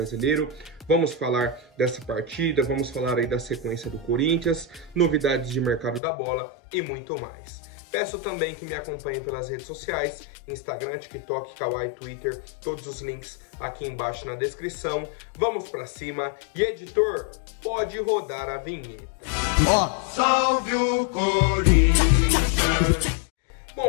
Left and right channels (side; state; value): right; drops out; at 6.0 s